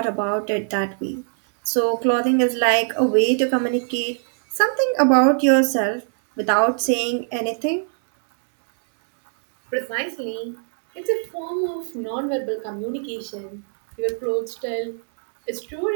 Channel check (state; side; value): silent; left; digital silence